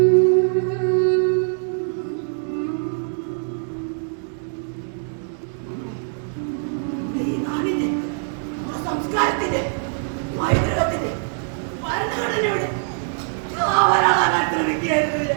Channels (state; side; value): silent; left; digital silence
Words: ഈ നാടിന്റെ സംസ്കാരത്തിന്റെ പൈതൃകത്തിന്റെ ഭരണഘടനയുടെ കാവലാളാകാൻ ശ്രമിക്കുകയായിരുന്നു.